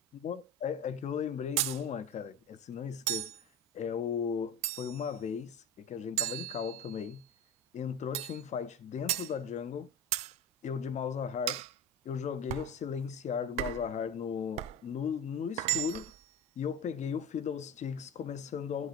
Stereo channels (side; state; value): both; normal; correlation 0.26